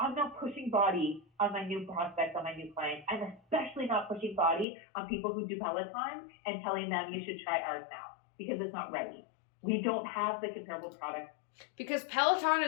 not pushing body on my new prospects, on my new clients. I'm especially not pushing body on people who do Peloton and telling them you should try ours now because it's not ready. We don't have the comparable product. Because Peloton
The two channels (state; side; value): drops out; right; at 4.7 s